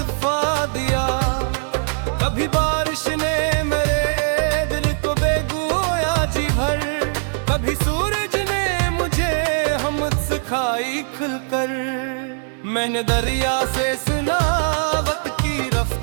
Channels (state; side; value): silent; left; 65 dB below the other